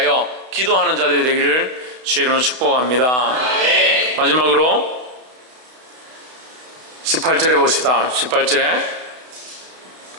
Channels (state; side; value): late; left; 32 ms